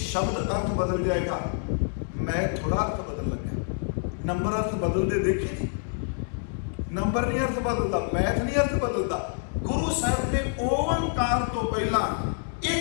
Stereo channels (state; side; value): silent; right; 57 dB below the other